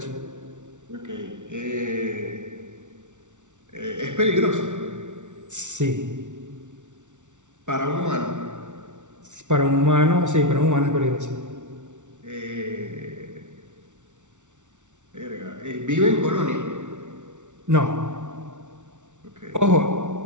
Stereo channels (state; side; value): late; left; 0.85 ms